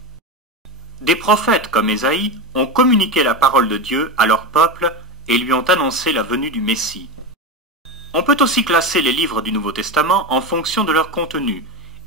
Des prophètes comme Ésaïe ont communiqué la parole de Dieu à leur peuple et lui ont annoncé la venue du Messie. On peut aussi classer les livres du Nouveau Testament en fonction de leur contenu,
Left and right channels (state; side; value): normal; both; correlation 0.20